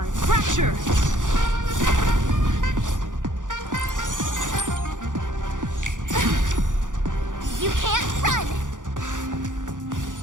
Fracture! You can't run!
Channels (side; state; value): left; late; 0.87 ms